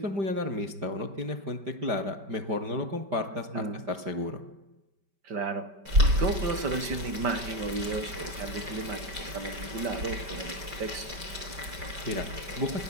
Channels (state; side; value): late; left; 5.1 ms